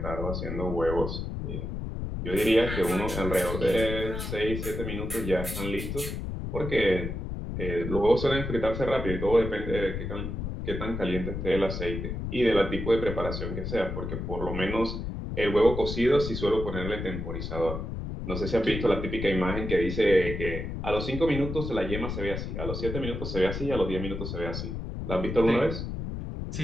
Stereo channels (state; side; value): noise; left; rumble, 5 dB below the sound